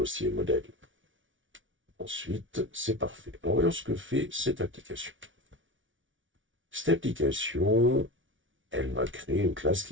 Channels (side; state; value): left; late; 0.56 ms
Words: modèle. Ensuite, c'est parfait. Alors, voyons ce que fait cette application. Cette application, elle va créer une classe